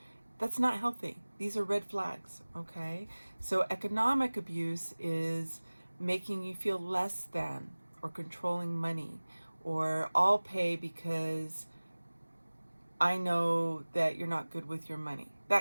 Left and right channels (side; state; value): both; inverted; correlation -1.00